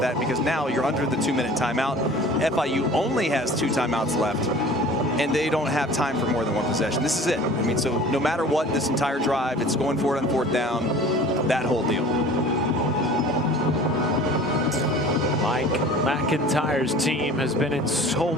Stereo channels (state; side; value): normal; both; correlation 0.44